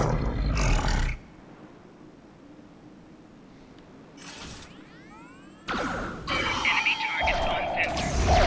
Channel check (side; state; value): both; identical; correlation 1.00